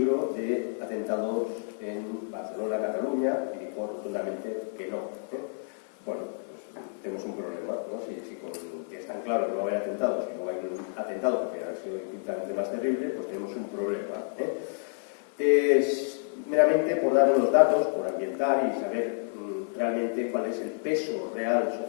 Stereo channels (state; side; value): silent; right; 58 dB below the other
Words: de atentados en Barcelona, Cataluña, y dijo rotundamente que no. Bueno, pues tenemos un problema, ¿no? Si que es tan claro que no va a haber atentados, si no hay un atentado porque ha sido infinitamente más terrible, pues tenemos un problema. Es meramente por dar unos datos, por ambientar y saber realmente cuál es el peso real